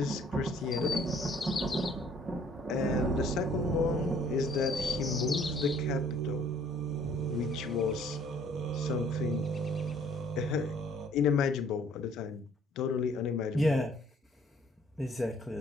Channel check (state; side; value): normal; both; correlation 0.59